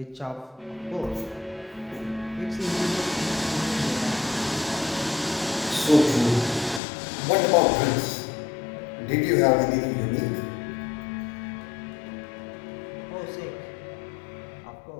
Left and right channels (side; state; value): right; drops out; at 6.8 s